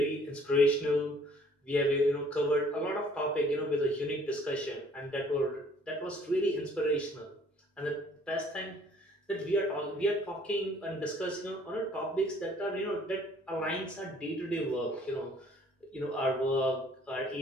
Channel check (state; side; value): normal; both; correlation 0.58